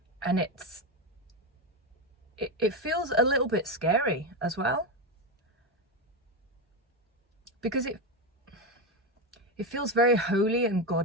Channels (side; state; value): both; normal; correlation 0.12